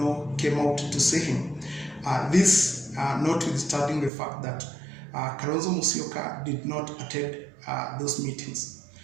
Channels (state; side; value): drops out; left; at 4.1 s